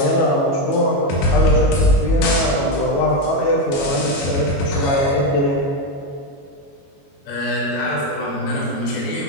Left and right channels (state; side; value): late; right; 21 ms